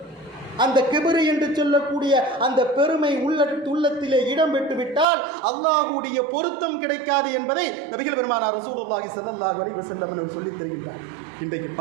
அந்த கிபிரு என்று சொல்லக்கூடிய அந்த பெருமை உள்ளத்திலே இடம் பெற்றுவிட்டால் அல்லாஹ்வுடைய பொருத்தம் கிடைக்காது என்பதை நபிகள் பெருமானார் ரசூலுல்லாஹி ஸல்லல்லாஹு அலைஹி வஸல்லம் அவர்கள் சொல்லித் தருகின்றார். இன்றைக்கு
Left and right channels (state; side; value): drops out; left; at 5.1 s